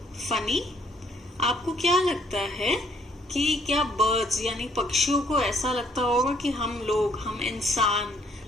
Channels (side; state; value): both; normal; correlation 0.66